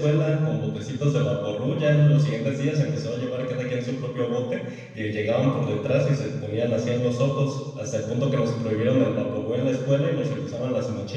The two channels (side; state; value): both; identical; correlation 1.00